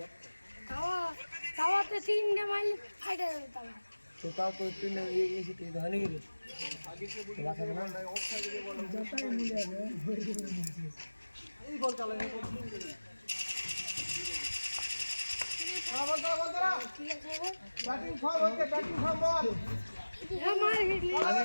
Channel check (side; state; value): both; inverted; correlation -1.00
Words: তাওয়াতে তিনটে মাইল ফাইটা যাবে তাওয়া। তো তাও তো তুই এসে তুই ধরে গেলি বাঁচাবে না। ঠিক আছে